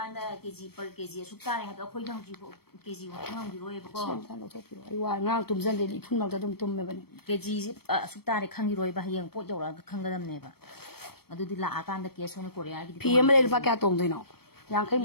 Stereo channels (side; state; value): right; late; 0.96 ms